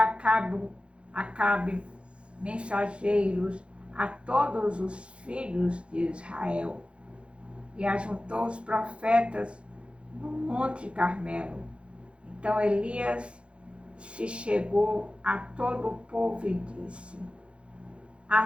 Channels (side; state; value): left; late; 0.058 ms